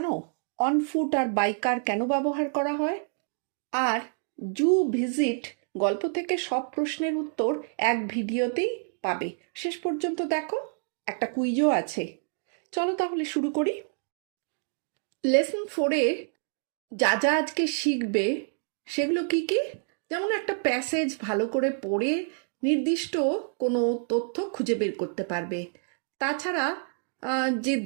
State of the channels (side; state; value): left; silent; 59 dB below the other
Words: অন ফুট আর বাইকার কেন ব্যবহার করা হয়? আর জু ভিজিট গল্প থেকে সব প্রশ্নের উত্তর এক ভিডিওতেই পাবে। শেষ পর্যন্ত দেখো, একটা কুইজও আছে। চলো তাহলে শুরু করি। লেসন 4-এ যা যা আজকে শিখবে সেগুলো কি কি? যেমন একটা প্যাসেজ ভালো করে পড়ে নির্দিষ্ট কোনো তথ্য খুঁজে বের করতে পারবে। তাছাড়া যে